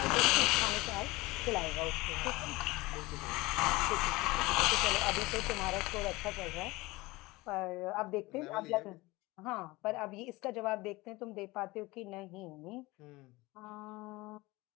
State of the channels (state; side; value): quieter; right; 21.5 dB